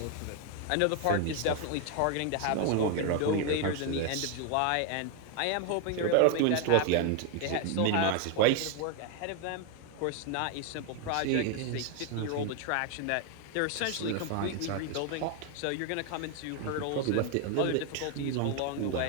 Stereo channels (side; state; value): both; different; correlation 0.01